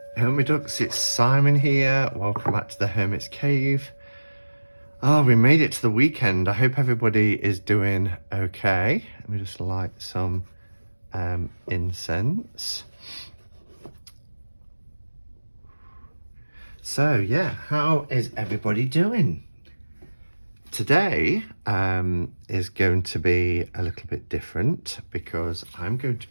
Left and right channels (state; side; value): inverted; both; correlation -1.00